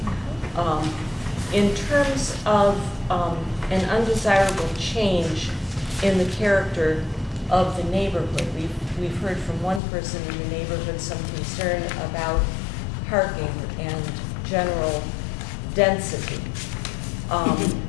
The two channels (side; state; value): right; drops out; at 9.8 s